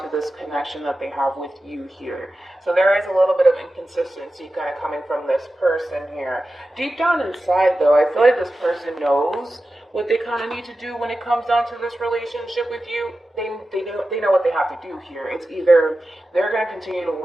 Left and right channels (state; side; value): normal; both; correlation 0.93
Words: this connection that they have with you here. So there is a little bit of inconsistency kind of coming from this person here. Deep down inside, though, I feel like this person knows what they kind of need to do when it comes down to this relationship with you. They know what they have to do here. It's either they're going to continue to